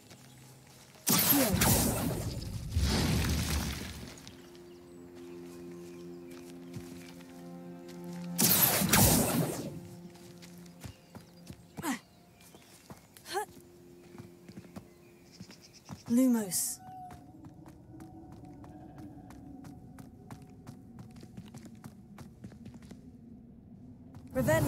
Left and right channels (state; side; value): identical; both; correlation 1.00